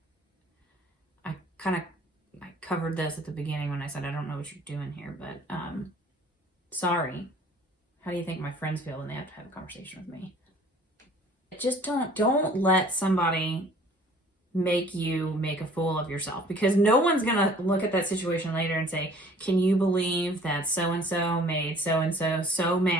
I covered this at the beginning when I said I don't know what you're doing here, but sorry. How do you think my friends feel when they have to have a conversation with me? Just don't let somebody make you make a fool of yourself, because no one's gonna look at that situation later and say, can you believe that so-and-so made so-and-so so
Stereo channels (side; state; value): both; normal; correlation 0.52